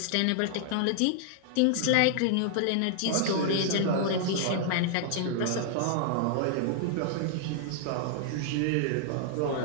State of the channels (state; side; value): different; both; correlation -0.01